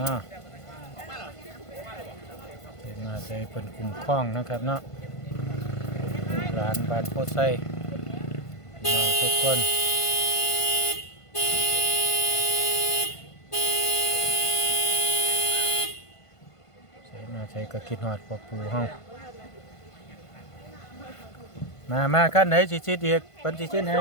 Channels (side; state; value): right; late; 1.5 ms